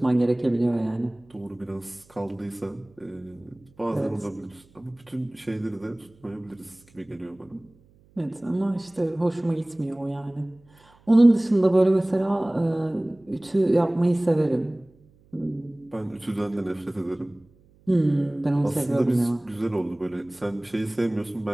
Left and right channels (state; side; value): noise; right; hum, 30 dB below the sound